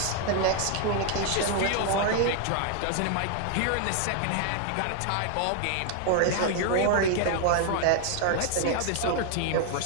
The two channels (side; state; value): both; different; correlation 0.00